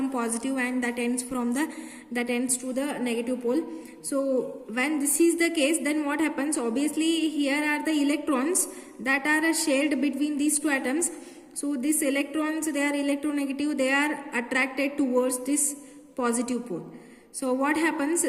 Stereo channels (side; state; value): both; identical; correlation 1.00